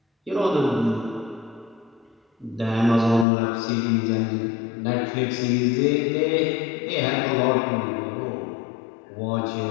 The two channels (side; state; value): right; drops out; at 3.2 s